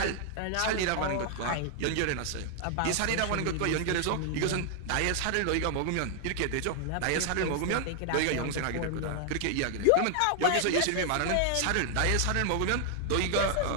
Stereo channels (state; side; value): different; both; correlation 0.00